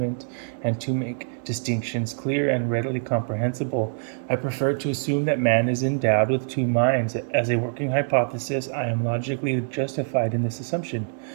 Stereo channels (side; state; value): left; silent; 62 dB below the other